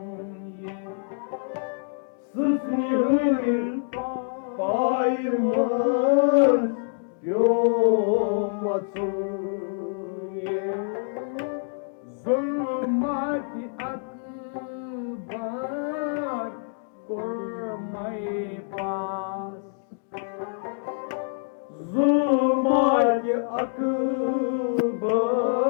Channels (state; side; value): silent; right; digital silence